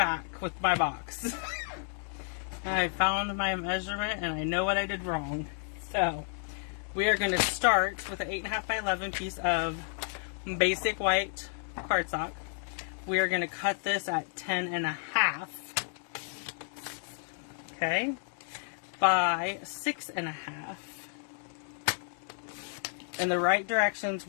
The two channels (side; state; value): right; silent; 57 dB below the other